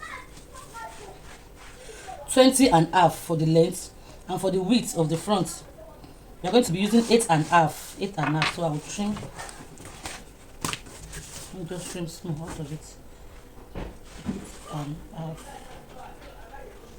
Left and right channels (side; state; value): both; identical; correlation 1.00